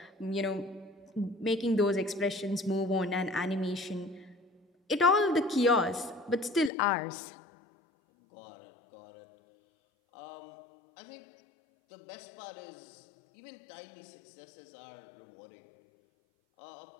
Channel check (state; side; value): drops out; right; at 6.7 s